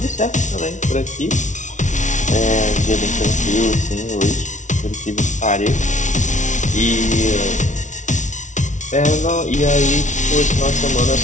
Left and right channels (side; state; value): right; late; 0.36 ms